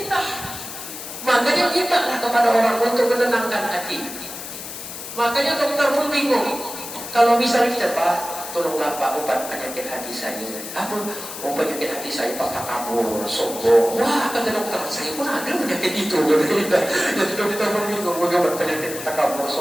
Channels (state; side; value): noise; left; hiss, 10 dB below the sound